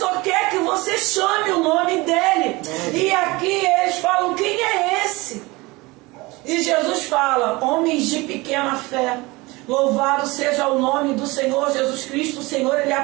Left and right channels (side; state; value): left; quieter; 22.9 dB